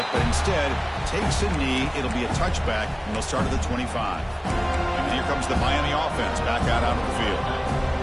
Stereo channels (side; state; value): both; identical; correlation 1.00